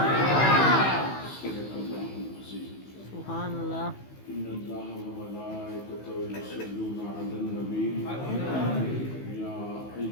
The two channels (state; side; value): late; right; 15 ms